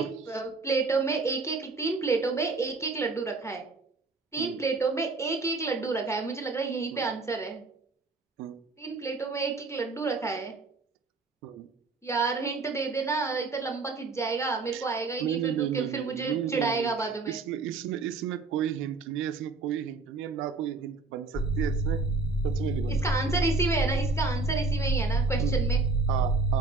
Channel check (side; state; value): left; quieter; 3.7 dB